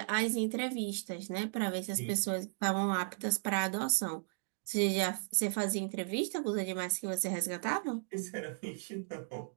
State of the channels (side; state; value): left; silent; digital silence